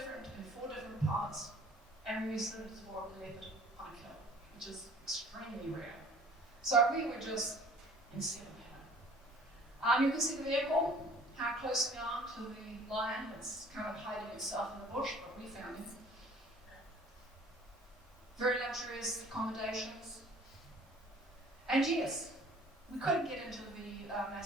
in 4 different parts, and we saw a leopard on a kill, which is extremely rare. So we were just in seven heaven. You can see the vehicle, how close we are to the lion. It's kind of hiding itself in the bush, but we found it. Very luxurious accommodations. And yes, we couldn't get into the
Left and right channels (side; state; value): both; normal; correlation 0.51